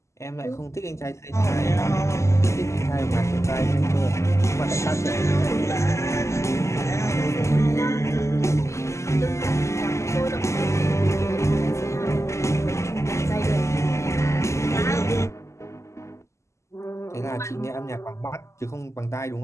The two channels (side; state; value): right; late; 0.14 ms